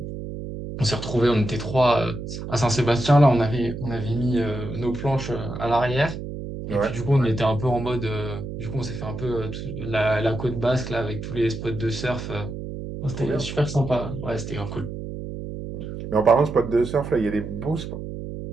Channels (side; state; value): right; noise; hum, 8 dB below the sound